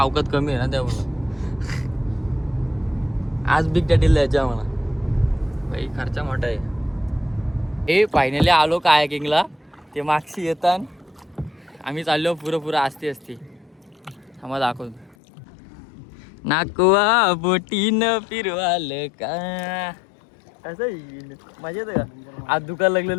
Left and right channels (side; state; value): right; drops out; at 15.2 s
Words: कमी आहे ना त्यामुळं. आज बिग डॅडीला जायचं म्हणा, भाई खर्चा मोठा आहे. हे फायनली आलो कायाकिंगला. ते मागशी येतात, आम्ही चाललो पुरं असते आम्हाला दाखवतो. नाकवा बोटीनं फिरवाल का असं येईल मजा येतं का. आज दुकान